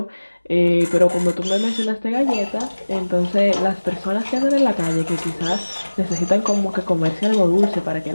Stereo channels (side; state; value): both; inverted; correlation -1.00